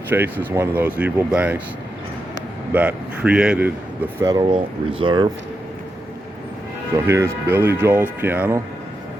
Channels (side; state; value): both; normal; correlation 0.86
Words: Chase is one of those evil banks that created the Federal Reserve. So here's Billy Joel's piano,